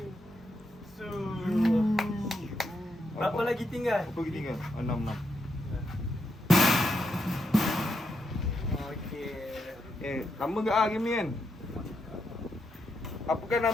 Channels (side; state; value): both; normal; correlation 0.82